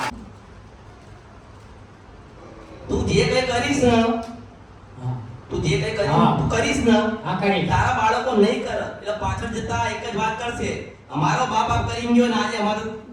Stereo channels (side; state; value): both; identical; correlation 1.00